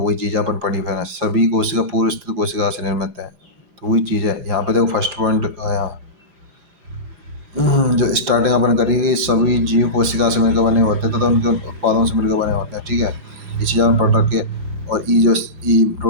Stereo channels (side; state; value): left; late; 4.9 ms